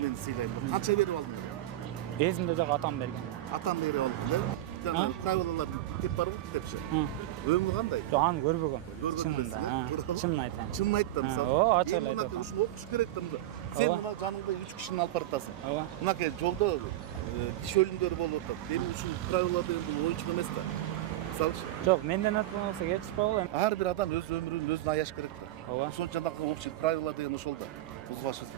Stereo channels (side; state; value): left; quieter; 14.4 dB